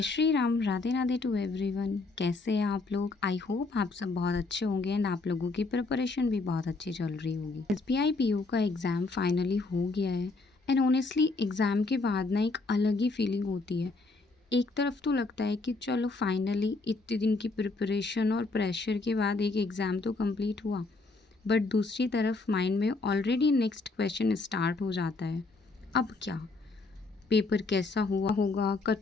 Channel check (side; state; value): right; quieter; 3.6 dB